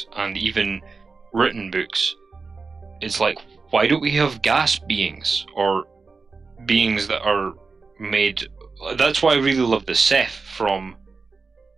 and even written books. It's like, why don't we have gas beings or beings that are made? That's why I really love the Ceph from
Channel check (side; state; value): left; quieter; 4.4 dB